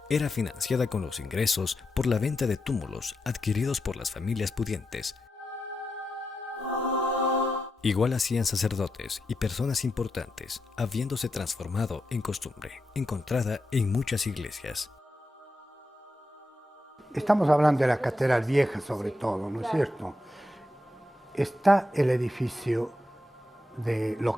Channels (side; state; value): both; normal; correlation 0.87